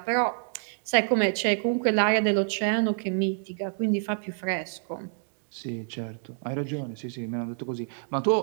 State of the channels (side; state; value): left; silent; digital silence